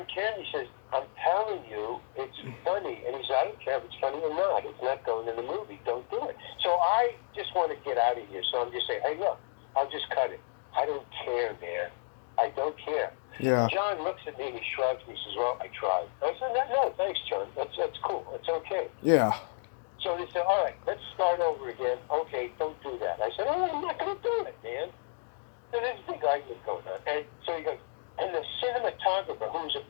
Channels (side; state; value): right; silent; digital silence